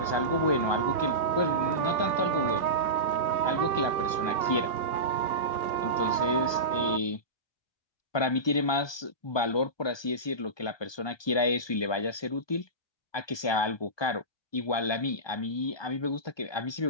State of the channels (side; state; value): right; late; 1.2 ms